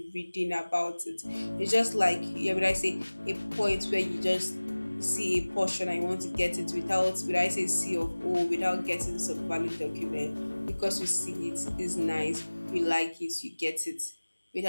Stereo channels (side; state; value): both; inverted; correlation -1.00